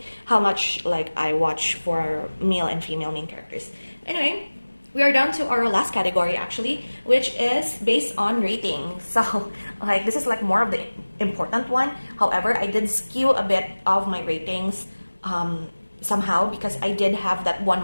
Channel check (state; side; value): inverted; both; correlation -1.00